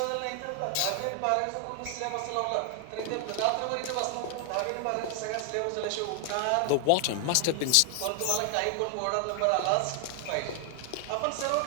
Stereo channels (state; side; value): different; both; correlation 0.00